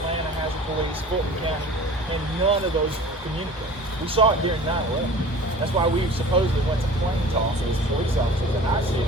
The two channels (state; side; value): normal; both; correlation 0.42